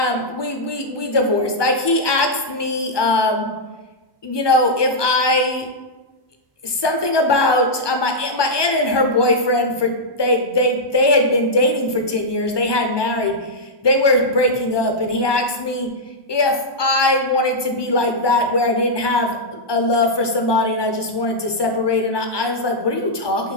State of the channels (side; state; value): right; late; 1.2 ms